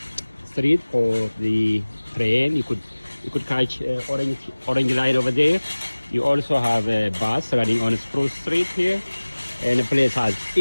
street for the train. You could catch orange line over there. You also have a bus running on Spruce Street here, and the place has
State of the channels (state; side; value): inverted; both; correlation -1.00